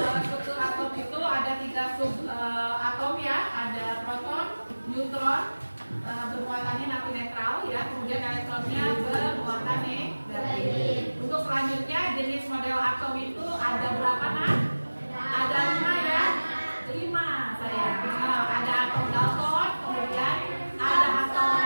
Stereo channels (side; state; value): both; inverted; correlation -1.00